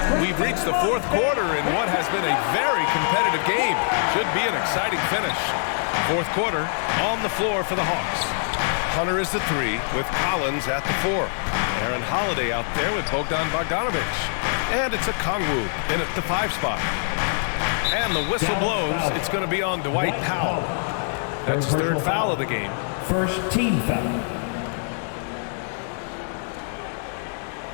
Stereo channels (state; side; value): silent; right; digital silence